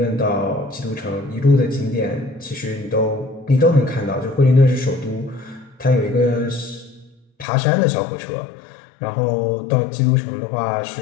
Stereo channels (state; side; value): drops out; right; at 7.5 s